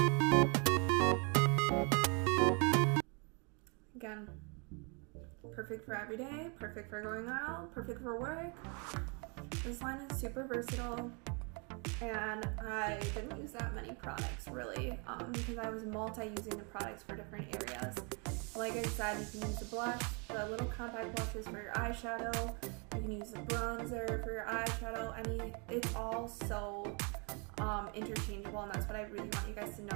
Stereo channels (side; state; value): left; quieter; 34.4 dB